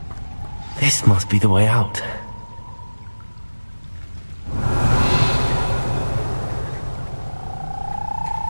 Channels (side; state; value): both; inverted; correlation -1.00